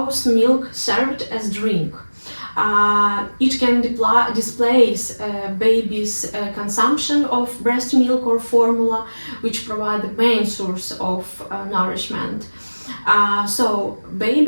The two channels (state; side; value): inverted; both; correlation -1.00